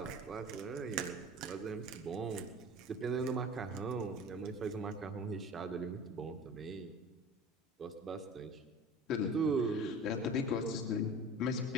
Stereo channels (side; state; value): both; normal; correlation 0.38